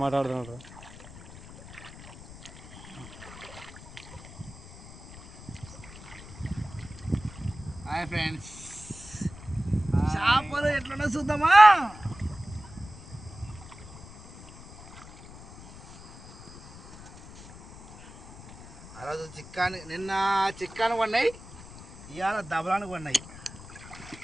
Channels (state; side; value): noise; left; rumble, 17 dB below the sound